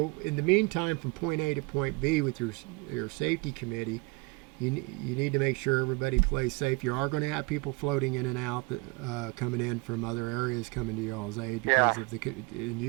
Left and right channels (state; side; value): quieter; left; 27.2 dB